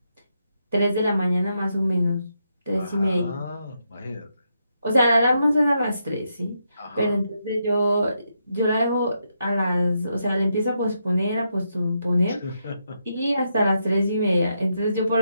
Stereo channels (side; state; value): both; inverted; correlation -0.81